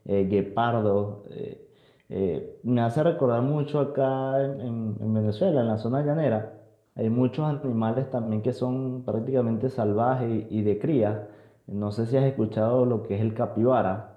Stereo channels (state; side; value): identical; both; correlation 1.00